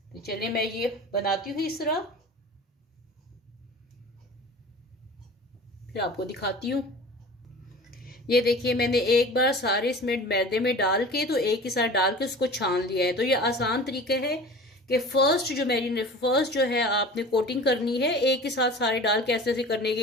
तो चलिए मैं ये बनाती हूँ इस तरह, फिर आपको दिखाती हूँ। ये देखिए मैंने एक बार सारे इसमें मैदे में डाल के, तो एक ही साथ डाल के उसको छान लिया है। तो ये आसान तरीका है कि फर्स्ट जो है आपने कोटिंग करनी है, एक ही साथ सारे डाल के ऐसे ऐसे करने के,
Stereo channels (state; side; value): normal; both; correlation 0.39